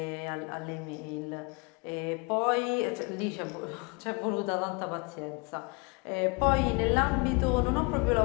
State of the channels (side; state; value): right; quieter; 31.0 dB